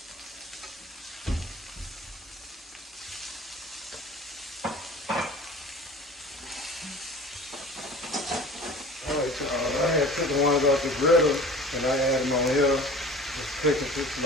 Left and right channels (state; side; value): normal; both; correlation 0.41